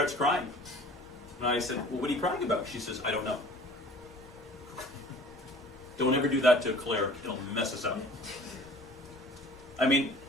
crying. And I said, "Well, what are you crying about?" She says, "I don't know." Don't ever do that to a cleric; it'll mess us up. I mean,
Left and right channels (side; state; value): both; normal; correlation 0.47